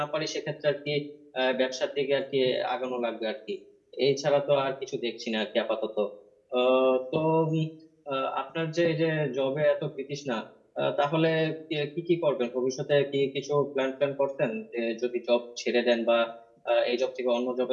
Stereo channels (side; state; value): both; identical; correlation 1.00